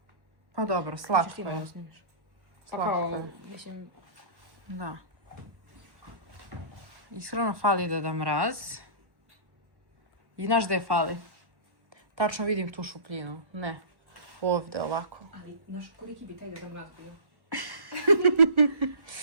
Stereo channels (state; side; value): late; left; 1.1 ms